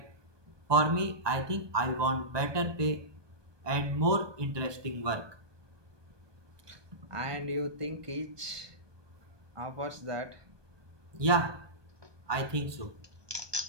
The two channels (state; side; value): late; left; 1.2 ms